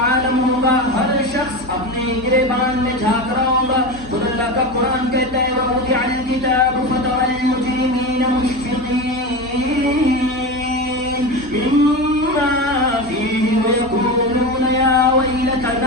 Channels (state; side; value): normal; both; correlation 0.23